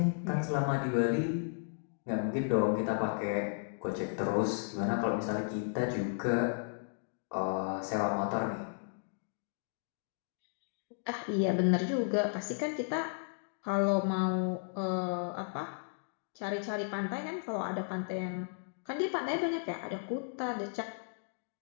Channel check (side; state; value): right; silent; digital silence